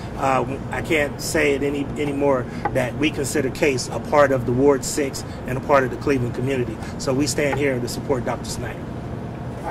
I can't say it anymore that we consider Case a part of the Ward 6 and a part of the Cleveland community. So we stand here to support Dr. Snyder.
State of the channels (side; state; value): both; identical; correlation 1.00